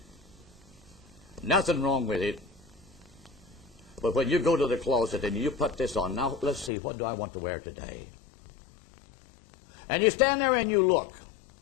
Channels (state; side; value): drops out; right; at 6.7 s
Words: Nothing wrong with it. But when you go to the closet and you put this on, now let's see, what do I want to wear today? And you stand there and you look.